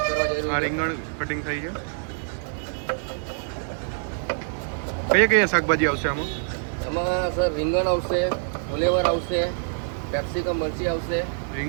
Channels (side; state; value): left; silent; digital silence